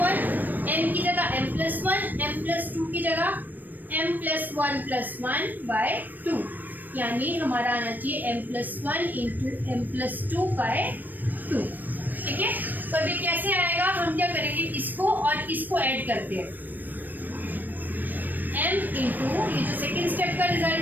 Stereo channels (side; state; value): left; late; 0.088 ms